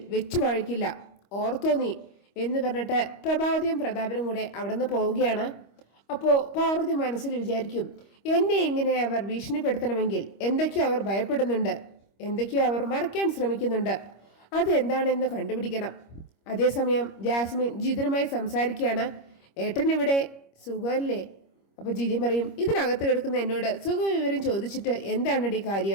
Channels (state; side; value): late; right; 25 ms